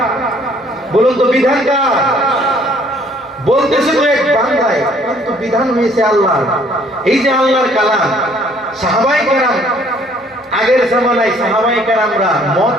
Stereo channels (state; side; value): normal; both; correlation 0.61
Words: বলুন তো বিধানকার বলতেছে তো এক বান্দায়, কিন্তু বিধান হয়েছে আল্লাহ। এই যে আল্লাহর কালাম, সাহাবায়ে কেরাম আগের জামানায় সাহাবায়ে কেরামরা মদ